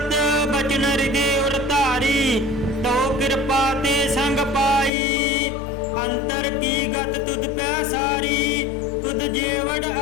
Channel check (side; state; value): right; drops out; at 4.9 s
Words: ਬਚਨ ਹਿਰਦੇ ਉਰ ਧਾਰੀ, ਤੋ ਕਿਰਪਾ ਤੇ ਸੰਗ ਪਾਈ। ਅੰਤਰ ਕੀ ਗਤ ਤੁਧ ਪੈ ਸਾਰੀ, ਤੁਧ ਜੇਵੜ